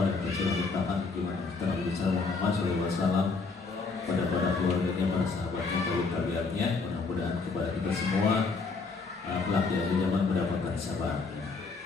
pada kita sudah bertahan gimana kita Nabi besar Muhammad SAW, pada keluarganya, para sahabatnya, kaum tabiatnya. Mudah-mudahan kepada kita semua kelak di akhir zaman mendapatkan syafaatnya.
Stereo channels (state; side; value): quieter; right; 4.3 dB